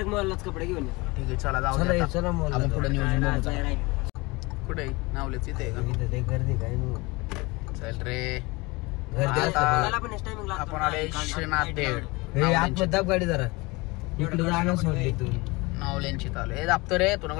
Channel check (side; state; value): right; quieter; 24.3 dB